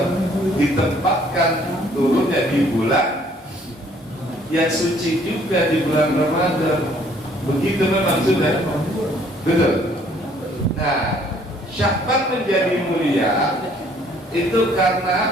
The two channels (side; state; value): both; normal; correlation 0.61